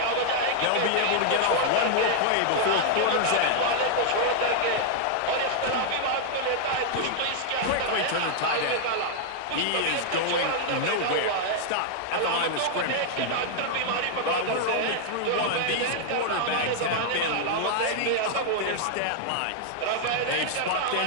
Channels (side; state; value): both; different; correlation -0.01